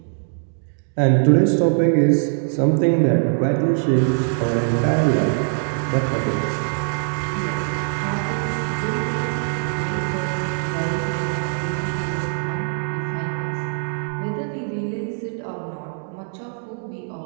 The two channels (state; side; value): silent; left; 64 dB below the other